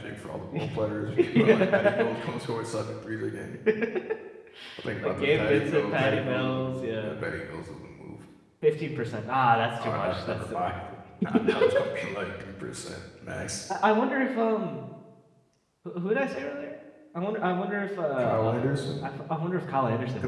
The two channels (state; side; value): identical; both; correlation 1.00